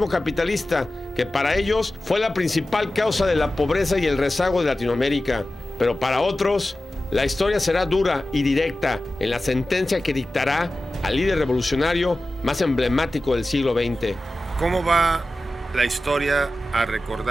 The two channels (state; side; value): normal; both; correlation 0.95